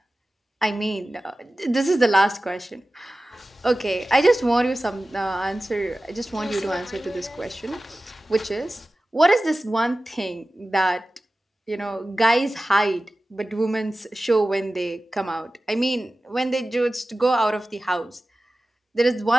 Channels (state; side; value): normal; both; correlation 0.95